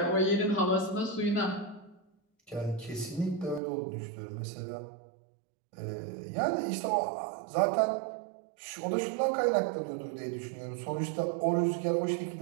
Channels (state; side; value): drops out; left; at 3.6 s